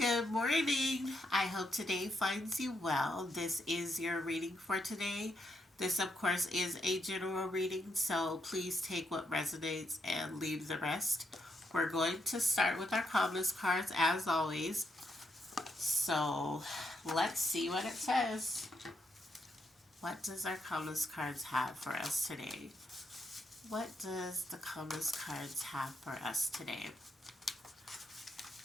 Good morning. I hope today finds you well. This is your reading for today. This, of course, is a general reading, so please take what resonates and leave the rest. We're going to start with our calmness cards as always. So let's see what it says. What does our calmness cards have for us today? What does the calmness cards have for us today?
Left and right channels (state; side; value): normal; both; correlation 0.79